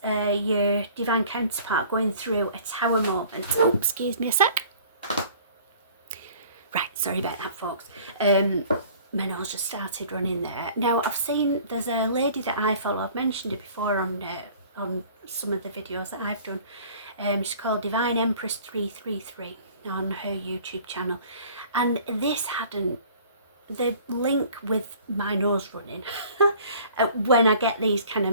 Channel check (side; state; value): both; inverted; correlation -0.50